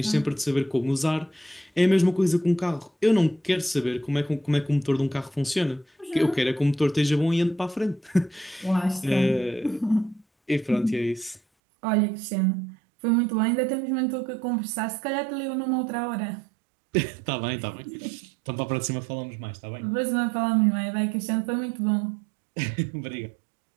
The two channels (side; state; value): left; drops out; at 11.4 s